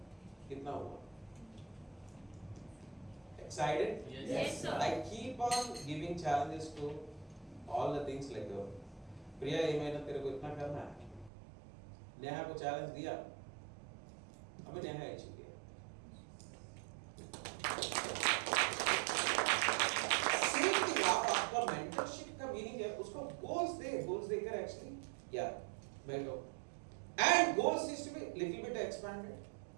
कितना हुआ, excited? Yes, sir. I keep on giving challenges to all the things like प्रिया ये महीना तेरे को इतना करना है। नेहा को चैलेंज दिया, अबे नेहा ही चुकी है। सेम थिंग आपका मेंटरशिप का मीनिंग है, उसको गोल्स देकर एक्चुअली यार बैठो, and goals is to be little bit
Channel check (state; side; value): drops out; left; at 11.3 s